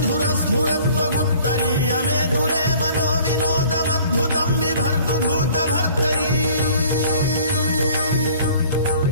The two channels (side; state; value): both; inverted; correlation -0.52